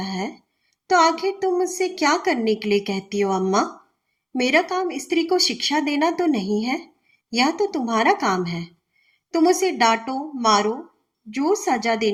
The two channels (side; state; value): both; identical; correlation 1.00